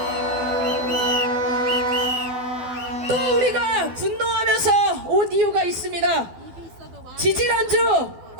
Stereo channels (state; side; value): late; left; 12 ms